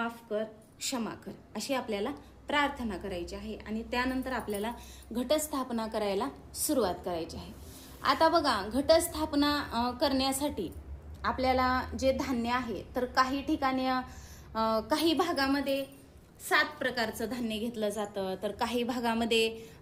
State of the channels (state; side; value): identical; both; correlation 1.00